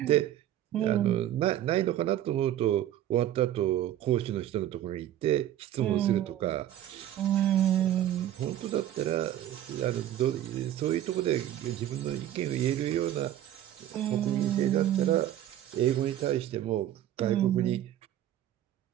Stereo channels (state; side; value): quieter; left; 12.1 dB